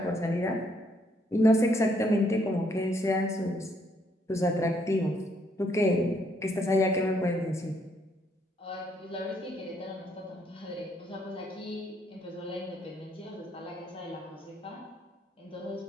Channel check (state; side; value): normal; both; correlation 0.71